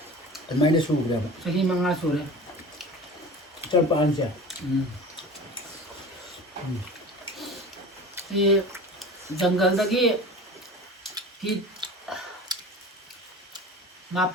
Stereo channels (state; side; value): normal; both; correlation 0.37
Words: ꯑꯗꯨꯃꯥꯏꯅ ꯁꯨꯈ꯭ꯔꯦꯕ ꯆꯍꯤ 5 ꯁꯨꯔꯦ ꯆꯠꯄꯥꯟꯁꯦ ꯁꯤ ꯖꯪꯒꯜꯗꯒꯤ ꯐꯤꯠ